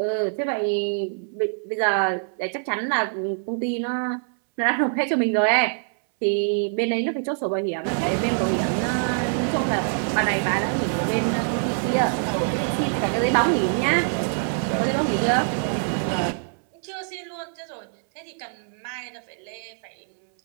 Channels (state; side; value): silent; left; 62 dB below the other